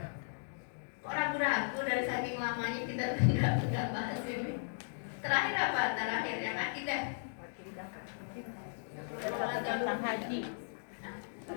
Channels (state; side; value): silent; right; digital silence